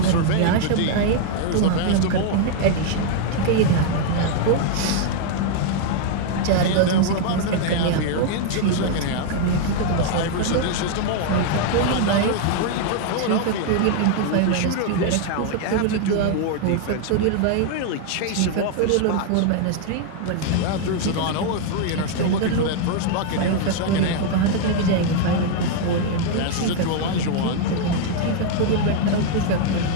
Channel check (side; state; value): both; different; correlation 0.00